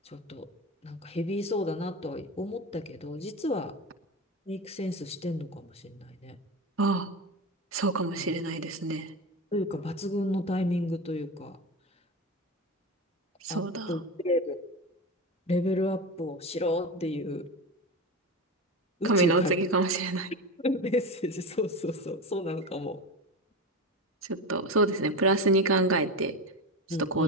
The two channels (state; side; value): normal; both; correlation 0.22